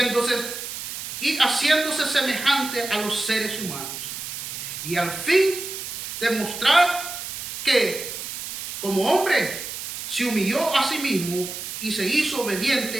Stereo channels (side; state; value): right; noise; hiss, 7 dB below the sound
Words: haciéndose semejante a los seres humanos. Y al fin demostrar que como hombre se humilló a sí mismo y se hizo